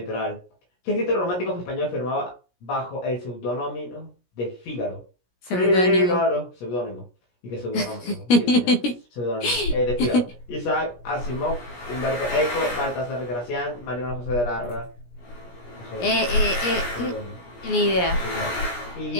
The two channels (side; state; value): right; late; 17 ms